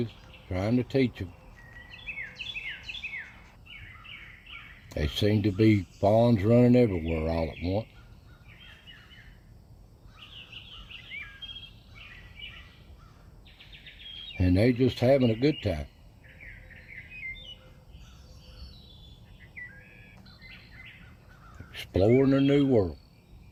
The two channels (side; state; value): both; identical; correlation 1.00